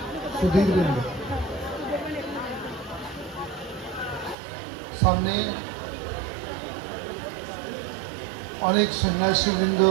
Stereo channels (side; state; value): left; drops out; at 4.4 s